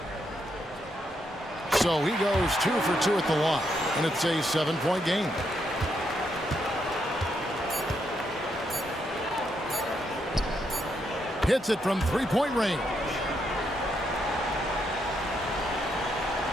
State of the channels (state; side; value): normal; both; correlation 0.78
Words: So he goes 2 for 2 at the line, and it's a 7-point game. Hits it from 3-point range.